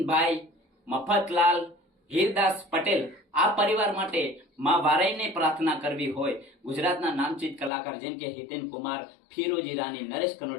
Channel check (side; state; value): right; drops out; at 7.7 s